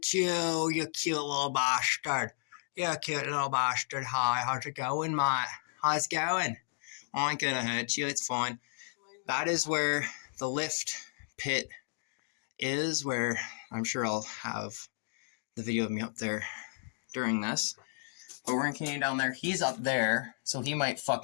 you, you cute little bastard. Yeah, cute little bastard. Hi, how's it going, mate? How's it going? I ain't gonna hurt you, it's fine. That is where the lift pit is, where I'm sure I'll have the video of me up there during this. But we're gonna continue down there. He's up there, so he might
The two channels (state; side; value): silent; right; digital silence